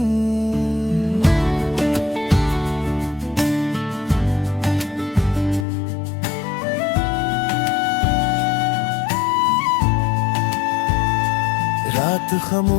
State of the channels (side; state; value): right; drops out; at 5.7 s